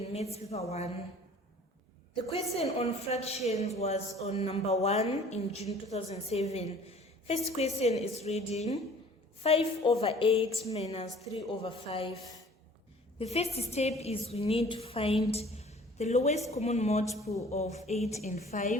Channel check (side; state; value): both; normal; correlation 0.50